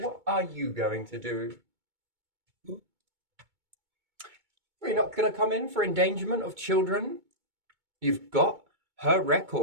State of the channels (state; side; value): late; left; 2.2 ms